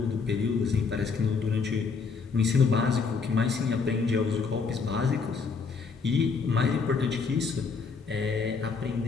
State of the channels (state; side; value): quieter; right; 5.1 dB